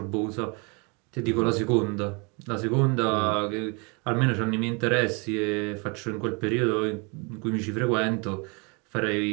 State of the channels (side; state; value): left; quieter; 31.2 dB